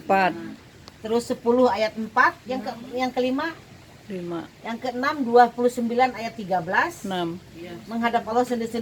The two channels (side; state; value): both; identical; correlation 1.00